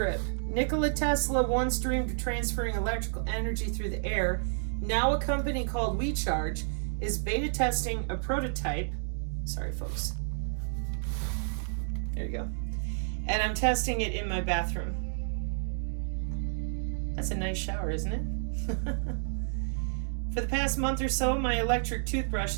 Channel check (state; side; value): silent; left; digital silence